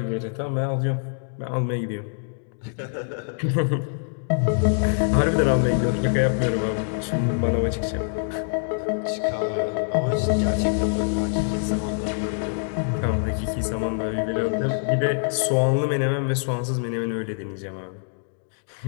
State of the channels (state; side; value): silent; right; digital silence